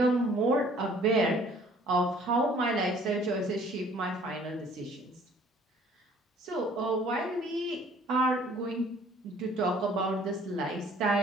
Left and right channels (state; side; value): normal; both; correlation 0.56